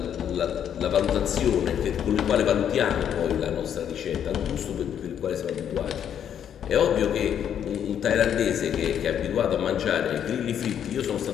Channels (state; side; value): quieter; right; 9.1 dB